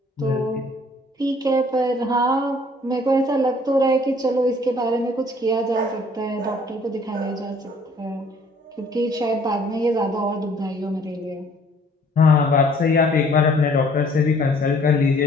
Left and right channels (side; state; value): both; normal; correlation 0.58